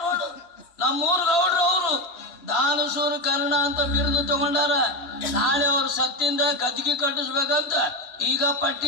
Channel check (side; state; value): right; late; 3.2 ms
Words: ನೋಡು, ನಮ್ಮೂರ್ ಗೌಡ್ರು. ಅವರು ದಾನಸೂರು ಕರ್ಣ ಅಂತ ಬಿರುದು ತಗೊಂಡಾರ. ನಾಳೆ ಅವ್ರ ಸತ್ತಿಂದ ಗದ್ದಿಗೆ ಕಟ್ಟಿಸ್ಬೇಕಂತ ಈಗ ಪಟ್ಟಿ